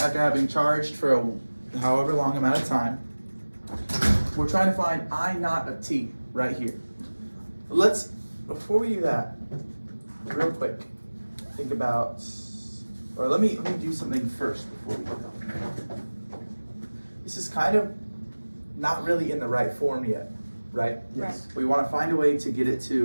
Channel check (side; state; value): both; inverted; correlation -1.00